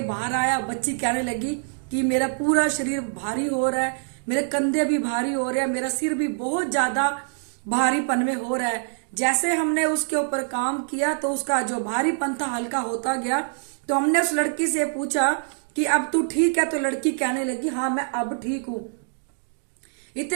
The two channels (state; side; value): silent; left; digital silence